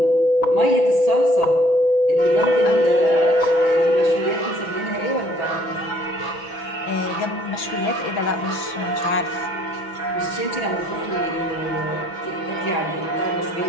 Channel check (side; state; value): right; late; 6.1 ms